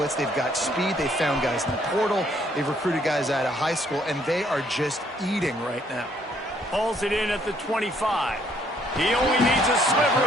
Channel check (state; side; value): normal; both; correlation 0.67